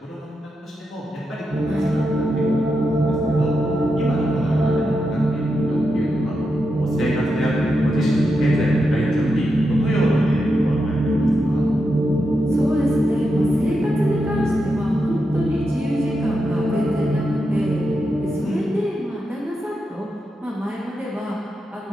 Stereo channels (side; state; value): both; normal; correlation 0.86